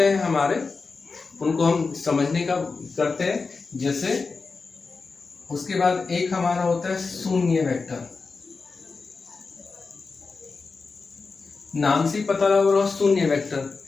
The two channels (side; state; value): right; quieter; 4.4 dB